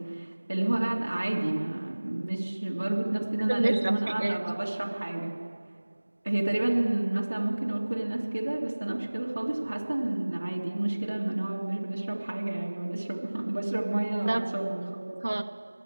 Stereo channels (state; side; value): inverted; both; correlation -1.00